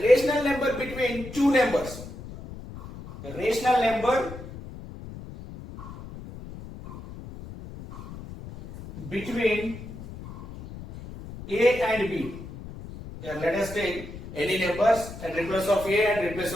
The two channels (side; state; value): left; noise; rumble, 13 dB below the sound